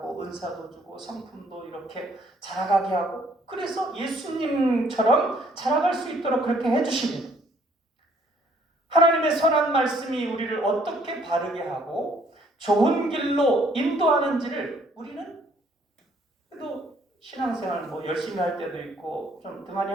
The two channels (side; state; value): both; normal; correlation 0.63